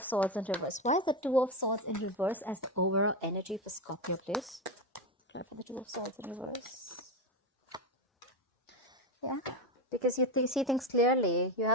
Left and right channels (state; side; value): normal; both; correlation 0.14